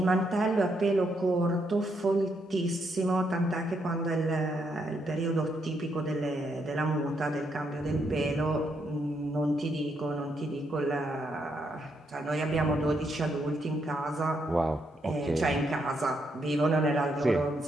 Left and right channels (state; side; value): normal; both; correlation 0.77